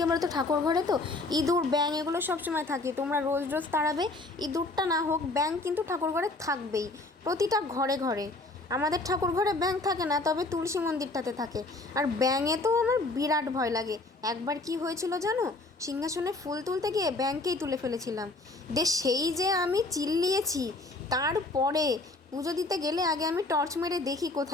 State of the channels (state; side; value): quieter; right; 3.1 dB